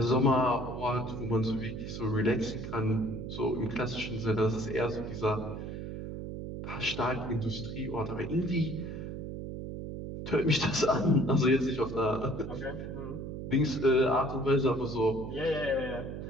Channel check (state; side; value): noise; right; hum, 7 dB below the sound